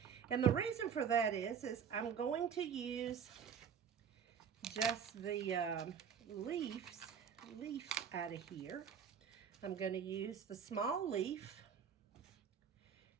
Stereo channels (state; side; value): quieter; left; 7.5 dB